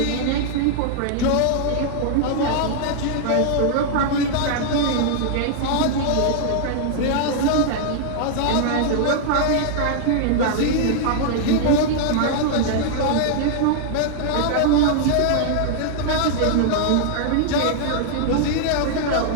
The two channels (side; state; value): both; different; correlation -0.01